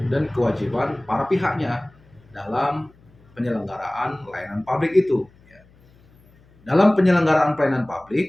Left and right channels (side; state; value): left; noise; hum, 29 dB below the sound